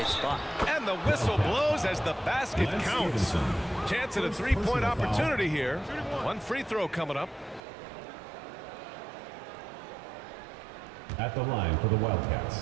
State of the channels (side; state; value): left; drops out; at 7.6 s